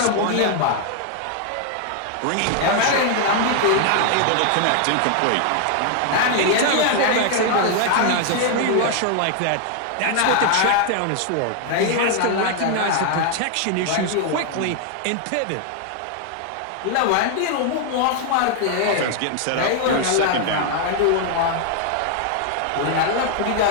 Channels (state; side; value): different; both; correlation 0.00